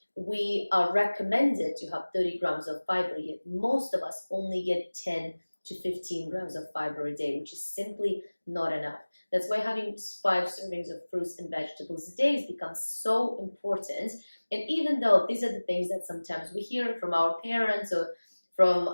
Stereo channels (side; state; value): both; inverted; correlation -1.00